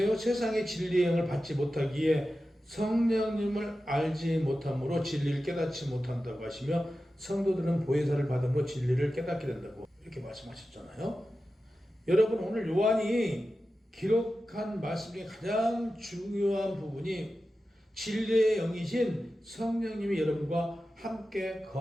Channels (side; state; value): both; normal; correlation 0.93